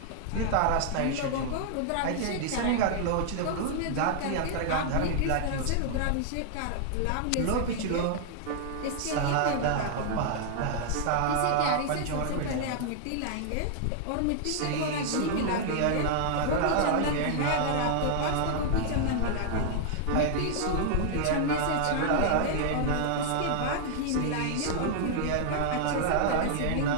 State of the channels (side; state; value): both; different; correlation 0.00